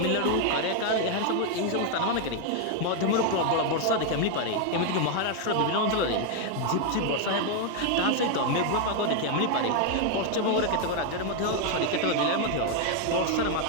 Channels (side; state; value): both; different; correlation 0.01